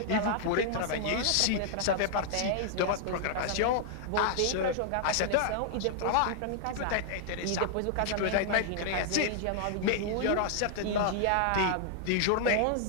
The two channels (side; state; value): both; different; correlation 0.00